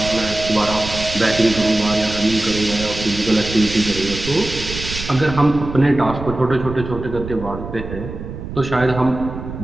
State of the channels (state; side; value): noise; right; rumble, 9 dB below the sound